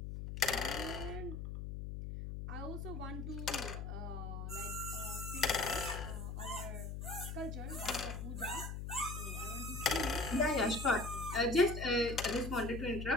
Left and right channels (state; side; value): noise; left; hum, 5 dB below the sound